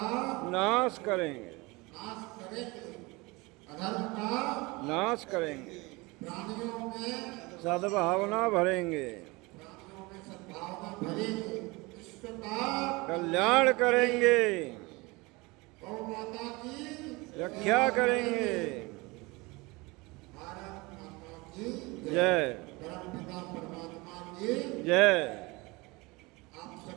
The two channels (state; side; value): quieter; left; 24.4 dB